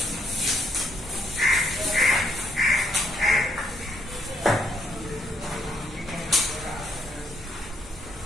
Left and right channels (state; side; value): normal; both; correlation 0.72